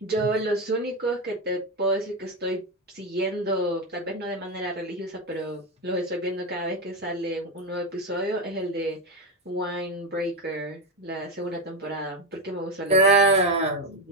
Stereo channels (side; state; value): both; normal; correlation 0.11